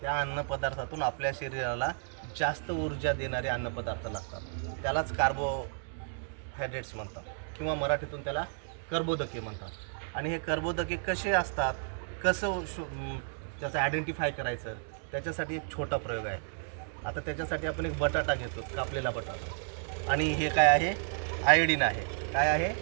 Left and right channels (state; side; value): silent; left; digital silence